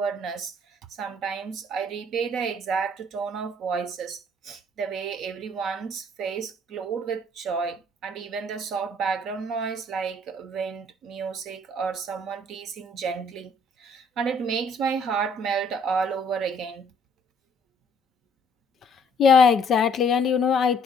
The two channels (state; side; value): normal; both; correlation 0.61